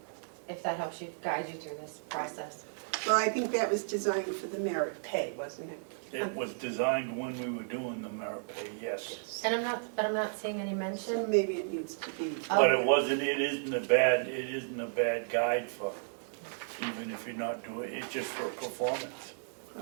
if that helps you, guide you through this process. Well, I think that was designed for the merit pay, wasn't it? It was designed when we were doing the merit pay, yes. And I'm not seeing any So mention. maybe it needs to be. But it isn't a bad guide for, even if you're not doing, it's just for performance.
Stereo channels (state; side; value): silent; left; digital silence